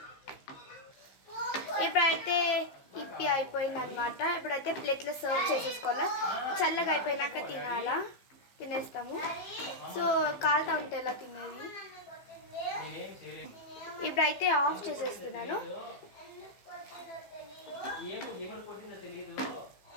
ఇప్పుడైతే ఇప్పి అయిపోయింది అనమాట. ఇప్పుడైతే ప్లేట్లో సర్వ్ చేసేసుకోవాలా. చల్లగా అయిపోయినాక తినేస్తాము. సో కాలుతా ఉంటే ఎలా తినేది. ఇప్పుడైతే ఆఫ్ చేసేస్తున్నాను.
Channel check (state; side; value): late; right; 15 ms